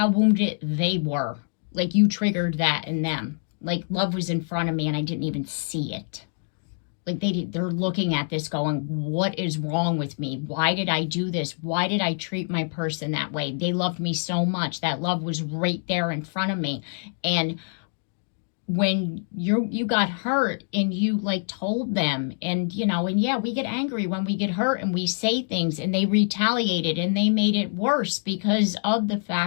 wounded they were. Like, you triggered that in them. Like, love was in front of me and I didn't even see it. Like, they're looking at this going, what is wrong with me? Why did I do this? Why did I treat my person that way? They loved me so much. That love was right there in front of me. And when you got hurt and you like told them, and you know, and yeah, we get angry when we get hurt and we say things, and they retaliated and they made it worse because of the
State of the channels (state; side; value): silent; right; digital silence